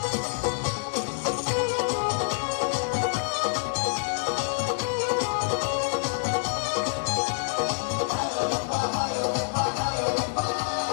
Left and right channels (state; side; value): silent; right; digital silence